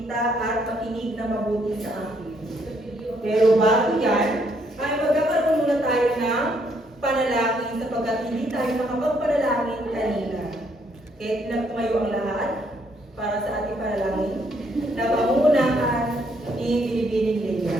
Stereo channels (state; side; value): normal; both; correlation 0.70